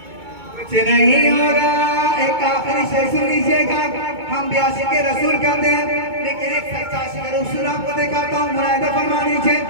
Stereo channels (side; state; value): left; late; 2.2 ms